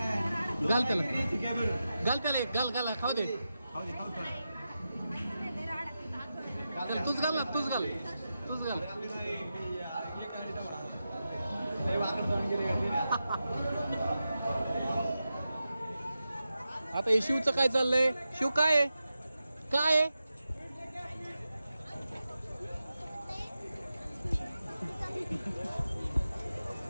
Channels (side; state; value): both; inverted; correlation -0.91